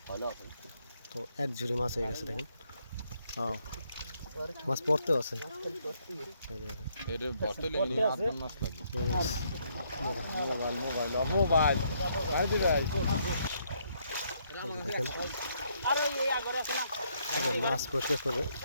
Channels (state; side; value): inverted; both; correlation -0.72